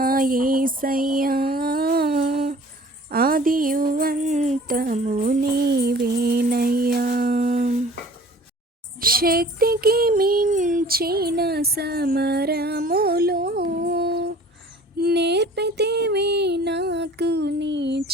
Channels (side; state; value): both; normal; correlation 0.48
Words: యేసయ్యా, ఆదియు అంతము నీవేనయ్యా. శక్తికి మించిన సమరములో నేర్పితివి నాకు నీ